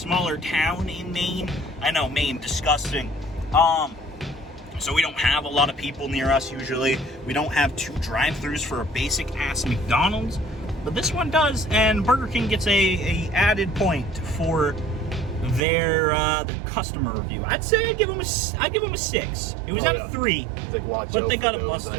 town in Maine. I know, Maine, disgusting. So we don't have a lot of people near us usually. We don't have 2 drive-thrus for a basic ass McDonald's, but this one does, and Burger King gets a added point for their customer review. I'd say I'd give them a 6. It was out of 3, but they got a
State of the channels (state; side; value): drops out; left; at 15.6 s